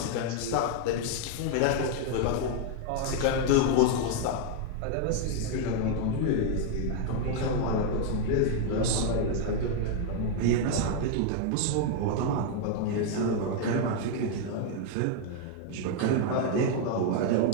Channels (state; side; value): different; both; correlation 0.00